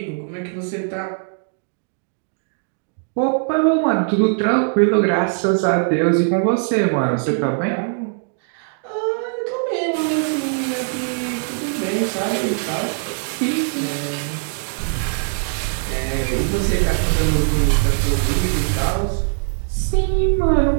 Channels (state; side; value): silent; left; 63 dB below the other